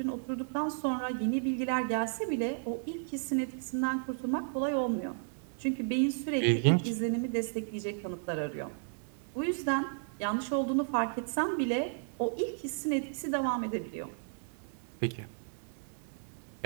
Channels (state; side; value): silent; left; digital silence